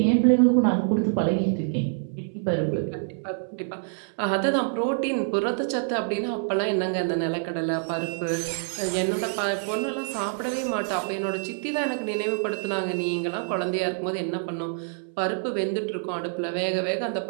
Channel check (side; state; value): left; silent; 61 dB below the other